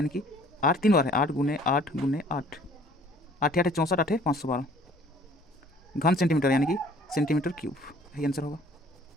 कि 8 3 बार है, 8 गुने 8 गुने 8, 8 8 64, 8 512 घन सेंटीमीटर यानी कि सेंटीमीटर क्यूब, यही आंसर होगा।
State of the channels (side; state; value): both; normal; correlation 0.55